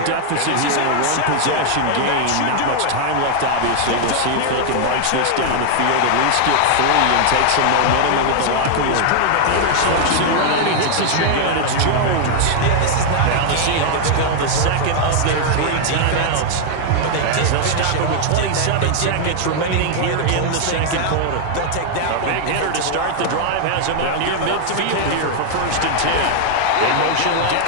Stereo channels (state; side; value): different; both; correlation 0.00